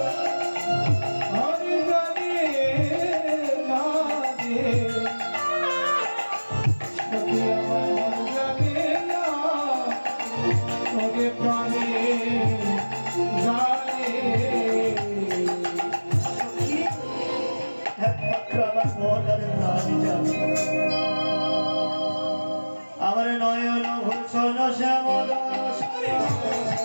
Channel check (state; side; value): inverted; both; correlation -1.00